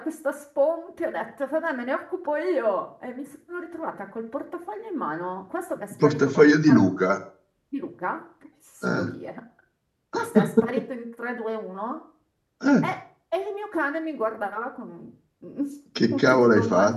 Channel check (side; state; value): both; identical; correlation 1.00